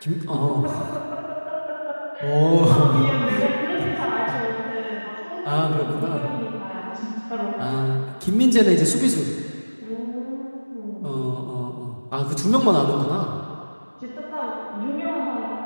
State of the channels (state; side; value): inverted; both; correlation -1.00